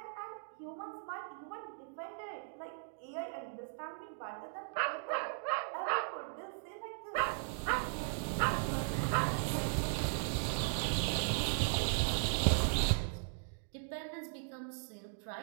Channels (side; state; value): left; silent; digital silence